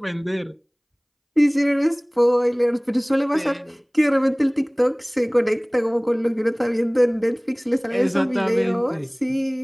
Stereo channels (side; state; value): both; identical; correlation 1.00